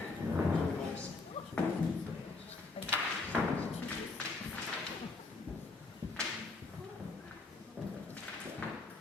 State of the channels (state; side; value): quieter; right; 3.7 dB